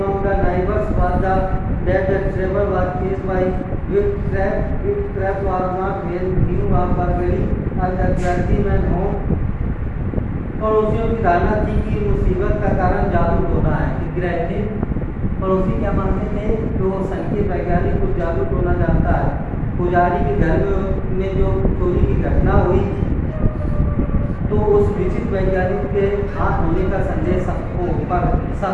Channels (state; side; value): identical; both; correlation 1.00